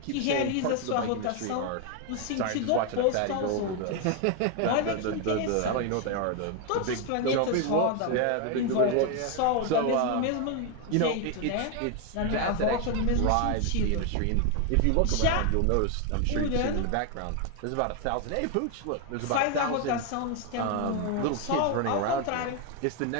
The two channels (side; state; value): both; different; correlation 0.01